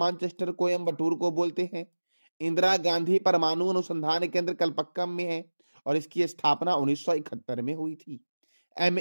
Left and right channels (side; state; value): both; inverted; correlation -1.00